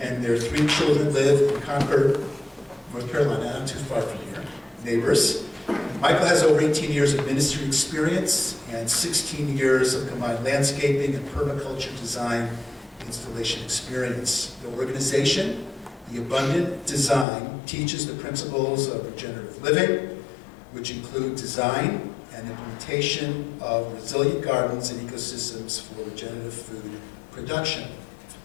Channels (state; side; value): drops out; right; at 17.2 s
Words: and their 3 children live in Concord, North Carolina, not too far from here, neighbors. Michael has over 18 years of ministry experience and 16 years of combined landscaping and permaculture design installation experience. The organization, The Abundant Design, teaches the principles of regenerative living, which include design and implementation of resilient gardens and ecosystems for regenerative food production.